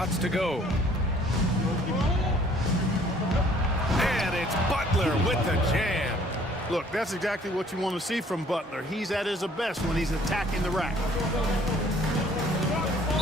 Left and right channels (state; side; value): normal; both; correlation 0.57